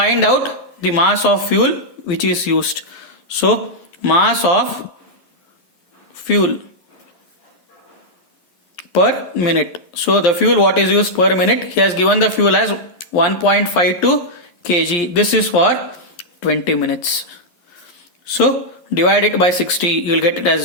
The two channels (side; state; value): right; late; 11 ms